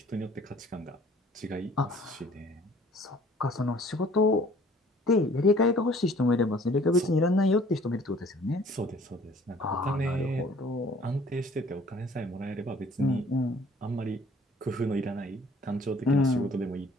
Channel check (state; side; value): normal; both; correlation 0.54